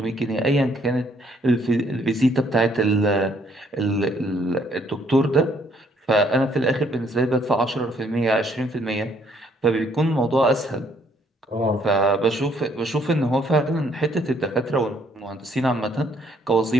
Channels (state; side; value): normal; both; correlation 0.66